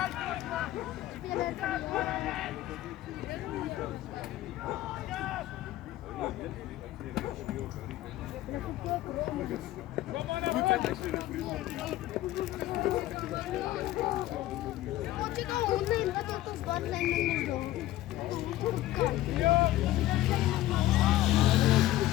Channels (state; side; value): quieter; right; 15.3 dB